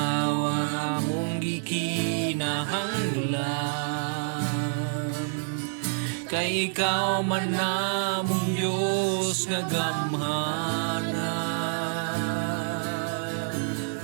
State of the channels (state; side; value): silent; left; digital silence